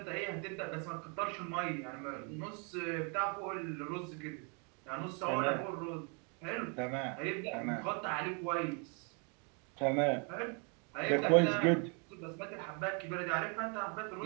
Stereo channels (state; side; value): quieter; left; 36.2 dB